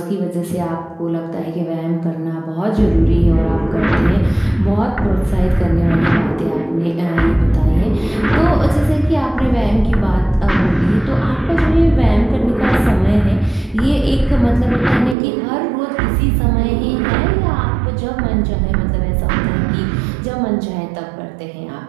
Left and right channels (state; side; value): drops out; left; at 15.2 s